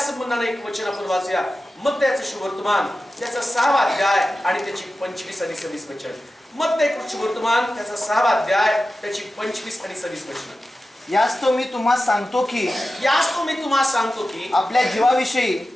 एक वचन आपण वाचूया. मत्तयाचं शुभवर्तमान त्याचा 6वा अध्याय आणि त्याची 25 आणि 26 वचन. मत्तयाचं शुभवर्तमान त्याचा 6वा अध्याय त्याची 25 आणि 26 वचन. यास्तव मी तुम्हाला सांगतो की आपल्या जीवाविषयी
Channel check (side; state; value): both; normal; correlation 0.93